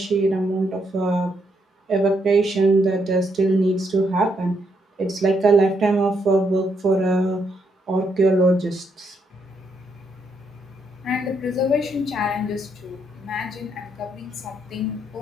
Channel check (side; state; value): both; normal; correlation 0.76